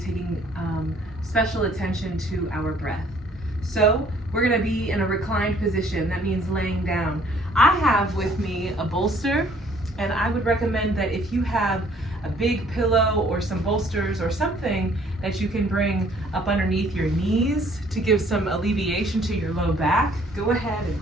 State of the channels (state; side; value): normal; both; correlation 0.60